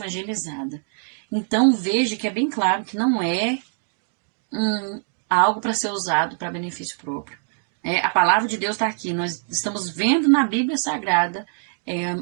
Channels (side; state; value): left; silent; 60 dB below the other